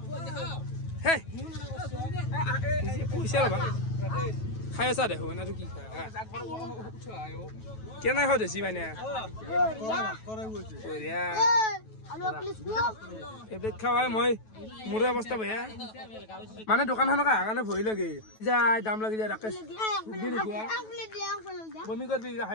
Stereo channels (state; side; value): late; right; 9.2 ms